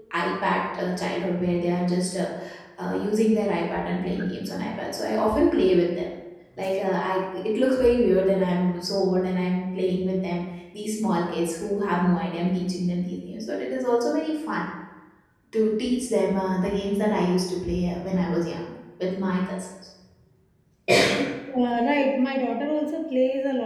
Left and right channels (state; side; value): identical; both; correlation 1.00